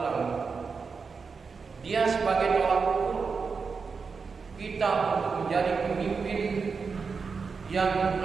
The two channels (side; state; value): left; quieter; 5.1 dB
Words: Dia sebagai tolak ukur kita untuk menjadi pemimpin yang